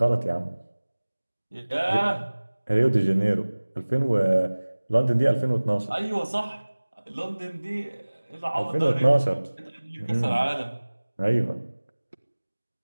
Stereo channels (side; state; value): both; inverted; correlation -1.00